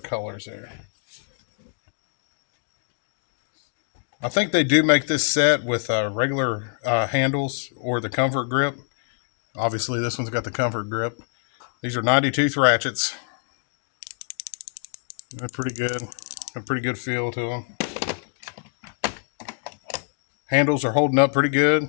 colors there. I think they do make this set with regular handles or the comfort grip. Obviously, this one's got the comfort grip. These are 90-tooth ratchets. They're pretty good. A pretty good feel to them. Handles are holding up pretty good.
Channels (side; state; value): right; silent; 62 dB below the other